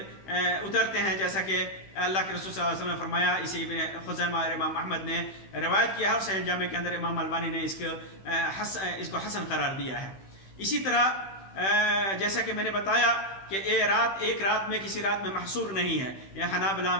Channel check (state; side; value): late; right; 15 ms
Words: اترتے ہیں، جیسا کہ اللہ کے رسول صلی اللہ علیہ وسلم نے فرمایا۔ اسے ابن خزیمہ اور امام احمد نے روایت کیا ہے، اور صحیح جامع کے اندر امام البانی نے اس کو حسن قرار دیا ہے۔ اسی طرح جیسا کہ میں نے بتایا کہ ایک رات میں کسی رات میں محصور نہیں ہے، یہ حنابلہ،